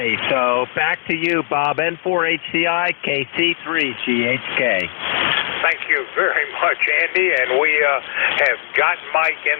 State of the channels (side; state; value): right; silent; 67 dB below the other